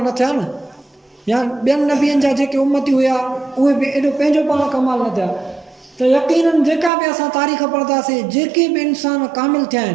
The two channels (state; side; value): drops out; left; at 6.9 s